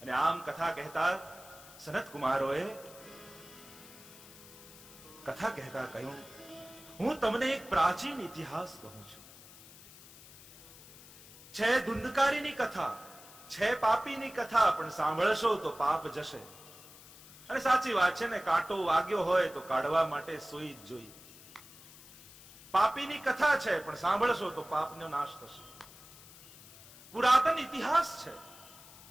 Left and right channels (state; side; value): noise; left; hiss, 20 dB below the sound